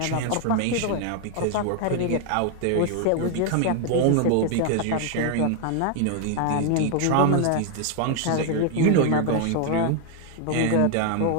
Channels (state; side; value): different; both; correlation 0.00